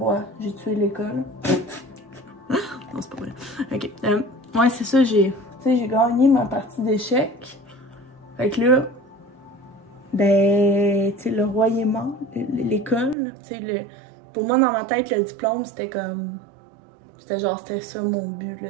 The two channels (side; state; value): left; drops out; at 13.2 s